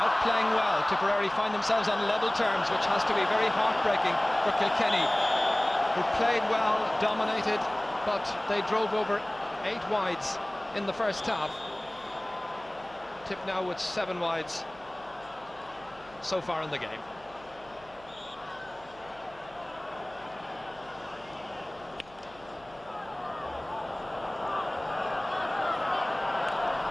playing well, Tipperary find themselves on level terms, which has to be very heartbreaking for Kilkenny, who played well, dominated, but they drove over 8 wides in the first half. Tip now with 7 wides so far in the game.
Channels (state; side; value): noise; right; hum, 24 dB below the sound